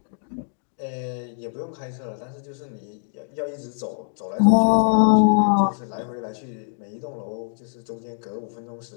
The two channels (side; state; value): right; silent; digital silence